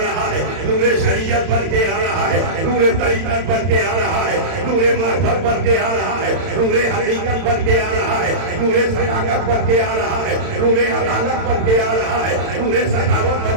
رہا ہے، نور شریعت بن کے آ رہا ہے، نور طریقت بن کے آ رہا ہے، نور معرفت بن کے آ رہا ہے، نور حقیقت بن کے آ رہا ہے، نور صداقت بن کے آ رہا ہے، نور عدالت بن کے آ رہا ہے، نور سخاوت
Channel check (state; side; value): late; left; 31 ms